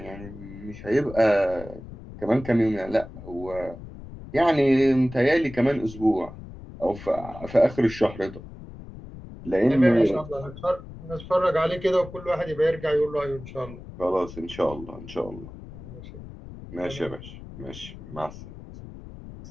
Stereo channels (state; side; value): noise; left; rumble, 14 dB below the sound